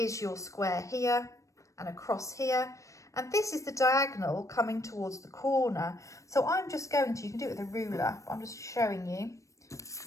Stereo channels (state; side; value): late; right; 0.15 ms